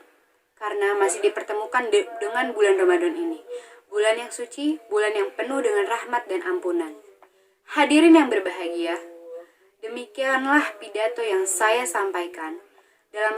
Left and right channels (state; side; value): identical; both; correlation 1.00